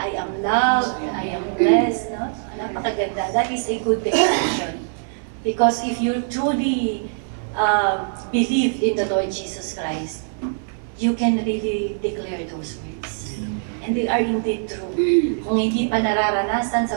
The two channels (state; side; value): silent; left; 64 dB below the other